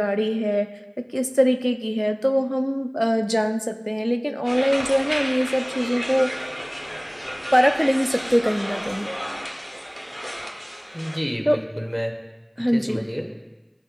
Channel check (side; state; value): both; identical; correlation 1.00